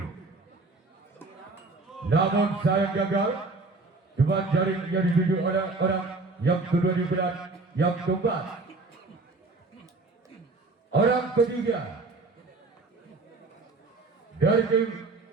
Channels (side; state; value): left; quieter; 3.5 dB